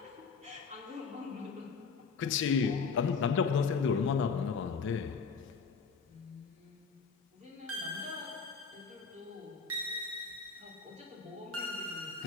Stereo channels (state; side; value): quieter; right; 5.4 dB